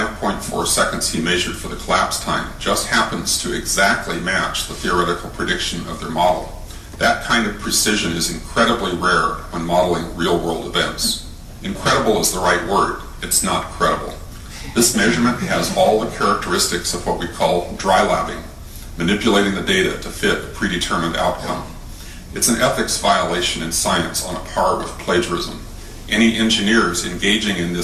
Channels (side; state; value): both; identical; correlation 1.00